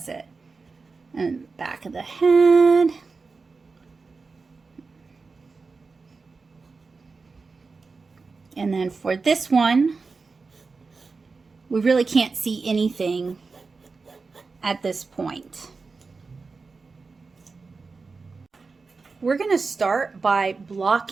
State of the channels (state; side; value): quieter; left; 4.3 dB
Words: it. And back of the head. And then for this one, we really can't see anything at this point. We're going to start by